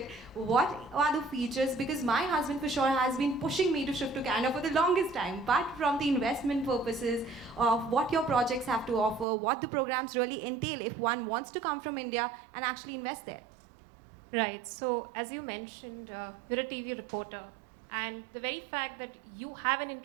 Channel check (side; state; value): left; drops out; at 9.2 s